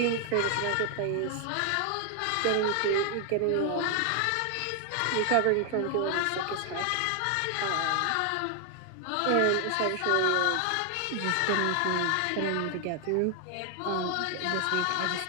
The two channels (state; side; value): different; both; correlation 0.00